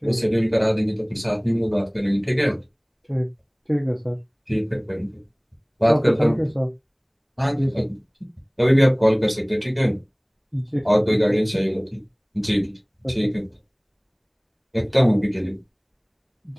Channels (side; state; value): both; identical; correlation 1.00